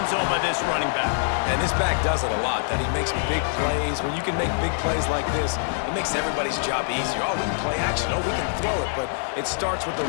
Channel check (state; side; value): silent; right; digital silence